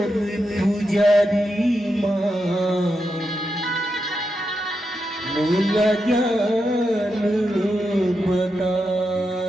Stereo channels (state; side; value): normal; both; correlation 0.86